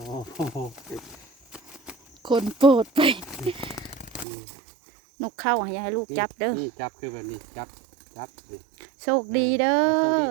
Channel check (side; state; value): left; drops out; at 4.2 s